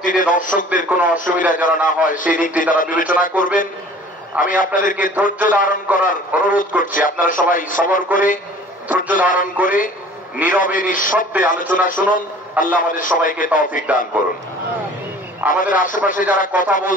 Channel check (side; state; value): both; normal; correlation 0.48